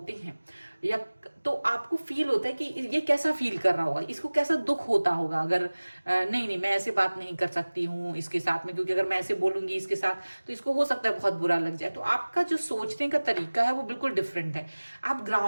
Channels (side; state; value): both; inverted; correlation -1.00